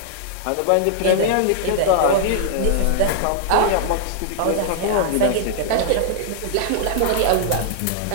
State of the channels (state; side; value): different; both; correlation -0.01